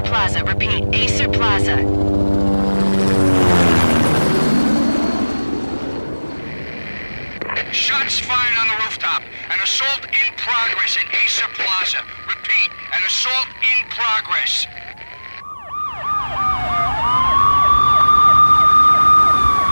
Plaza. Repeat, Acer Plaza. Shots fired on the rooftop. An assault in progress at Acer Plaza. Repeat, an assault in progress.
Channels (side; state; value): both; inverted; correlation -1.00